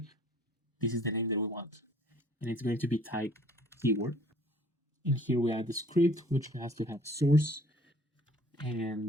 This is the name that we want, and it's going to be type keyword. And here we add the script, which has to have source,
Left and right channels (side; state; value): both; normal; correlation 0.55